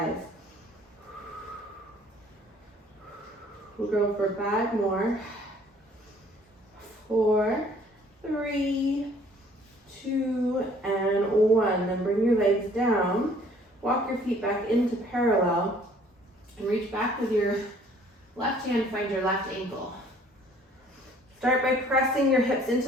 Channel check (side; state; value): both; normal; correlation 0.57